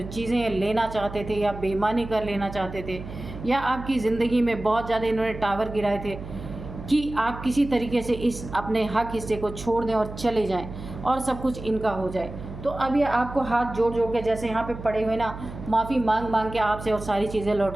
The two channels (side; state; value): right; noise; hum, 11 dB below the sound